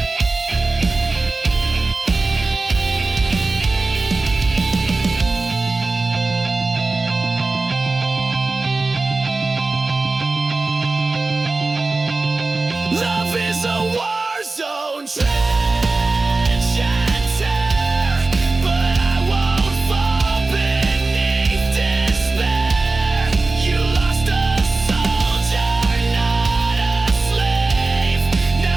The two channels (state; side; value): quieter; left; 3.5 dB